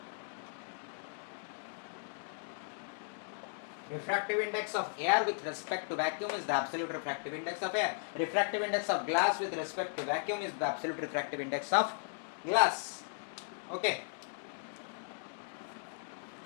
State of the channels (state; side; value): silent; right; digital silence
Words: Refractive index of air with respect to vacuum is the absolute refractive index of air. Refractive index of glass with respect to vacuum is the absolute refractive index of glass। Okay,